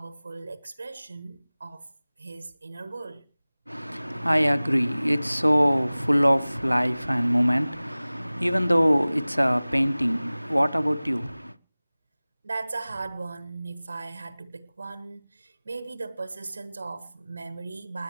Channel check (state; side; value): inverted; both; correlation -0.99